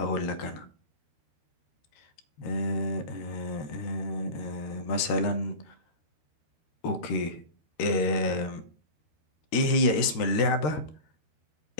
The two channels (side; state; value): right; late; 13 ms